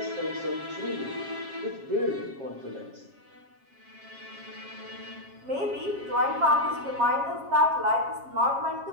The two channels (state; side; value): late; left; 7.4 ms